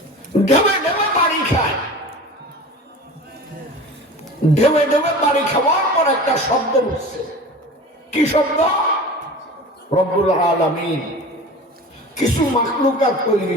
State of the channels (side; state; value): both; normal; correlation 0.36